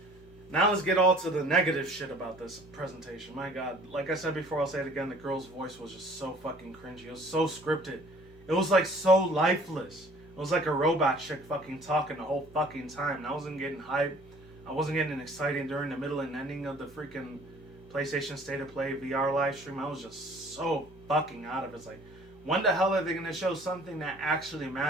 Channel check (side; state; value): both; normal; correlation 0.53